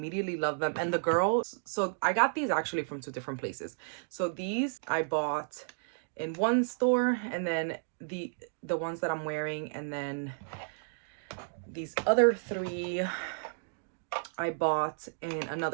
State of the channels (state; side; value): silent; left; digital silence